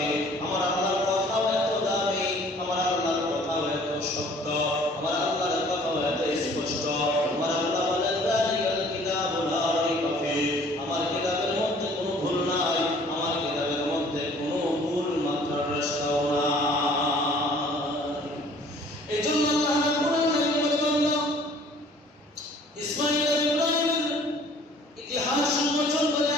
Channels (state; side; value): normal; both; correlation 0.54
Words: আমার আল্লাহর কথাও এত দামি, আমার আল্লাহর কথাও এত সত্য, আমার আল্লাহর কথাও এত স্পষ্ট। আমার আল্লাহ বলেন যালিকাল কিতাবু লা রাইবা ফীহ, আমার কিতাবের মধ্যে কোনো ভুল নাই, আমার কিতাবের মধ্যে কোনো ভুল মাত্রার রাস্তাও নাই। এই জন্য আল্লাহ রাব্বুল আলামিন বলেন ইসমাঈল আর ইব্রাহিমের ইতিহাস উন্মোচন করে